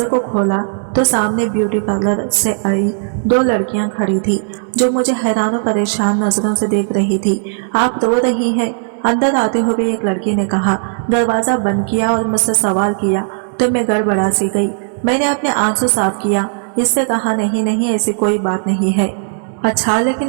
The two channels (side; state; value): left; silent; 68 dB below the other